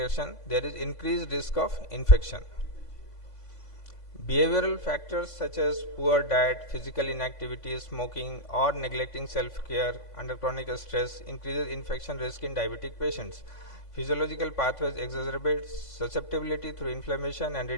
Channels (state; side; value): late; right; 3.5 ms